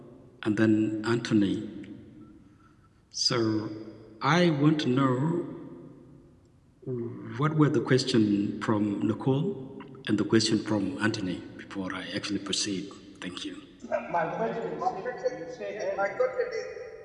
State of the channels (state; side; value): identical; both; correlation 1.00